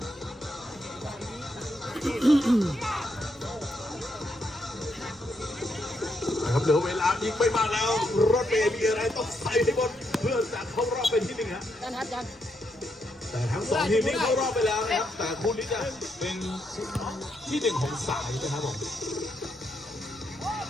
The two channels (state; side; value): noise; right; rumble, 29 dB below the sound